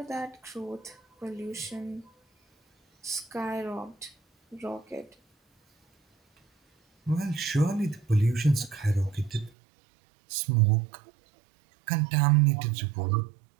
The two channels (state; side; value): drops out; left; at 9.5 s